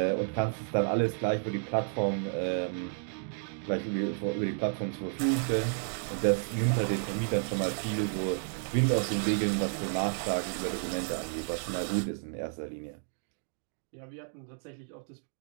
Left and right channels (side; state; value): left; silent; 57 dB below the other